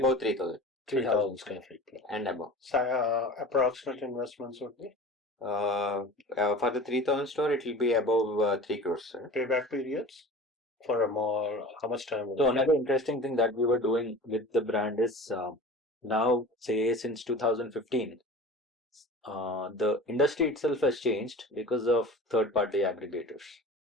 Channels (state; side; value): normal; both; correlation 0.38